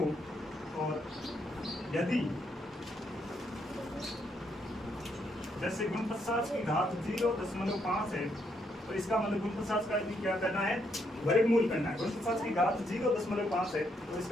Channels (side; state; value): both; normal; correlation 0.75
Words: और यदि जैसे 49 की घात 0.5 है तो इसका मतलब 49 का भी क्या करना है? वर्गमूल करना है। 49 की घात 0.5 है तो